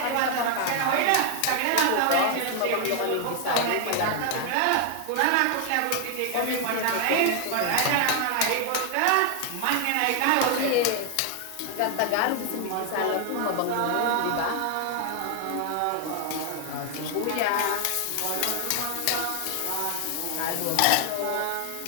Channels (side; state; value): both; different; correlation 0.00